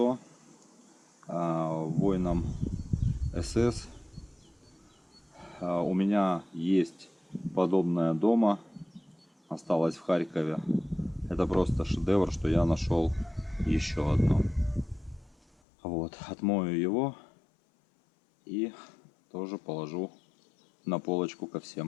воинам СС. У меня есть подобное дома, осталось в Харькове. Это просто шедевр, что я нашел еще одно. Вот, отмою его и тоже положу на полочку ко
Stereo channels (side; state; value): right; drops out; at 15.6 s